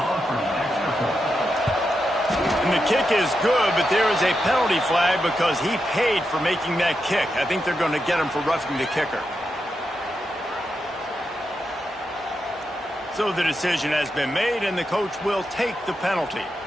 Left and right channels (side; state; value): both; normal; correlation 0.86